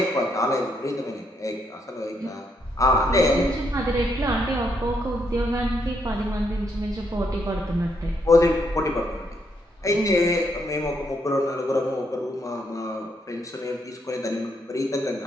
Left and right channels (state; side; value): normal; both; correlation 0.76